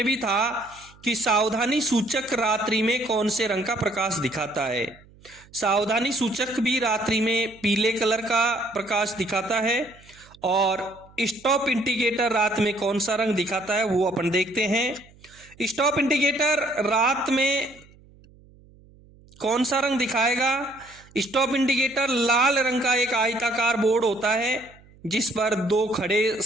भी था कि सावधानी सूचक रात्रि में कौन से रंग का प्रकाश दिखाता है? सावधानी सूचक भी रात्रि में पीले कलर का प्रकाश दिखाता है। और स्टॉप इंडिकेटर रात में कौन सा रंग दिखाता है वो अपन देखते हैं। स्टॉप इंडिकेटर रात में कौन सा रंग दिखाएगा? स्टॉप इंडिकेटर लाल रंग का एक आयताकार बोर्ड होता है जिस पर 2 खड़े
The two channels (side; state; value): right; noise; hum, 26 dB below the sound